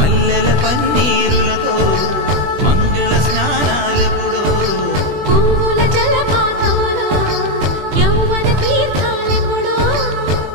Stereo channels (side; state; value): left; late; 20 ms